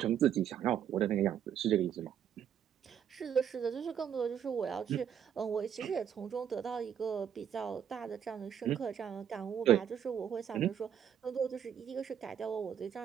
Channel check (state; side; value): quieter; left; 8.8 dB